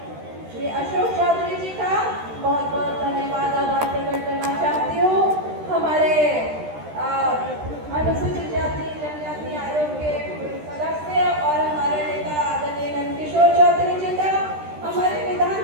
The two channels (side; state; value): left; late; 13 ms